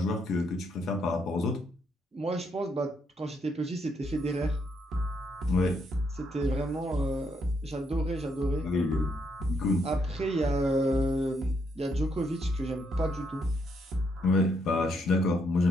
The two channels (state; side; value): normal; both; correlation 0.75